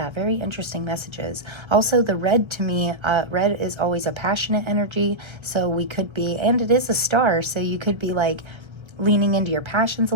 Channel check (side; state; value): left; late; 1.3 ms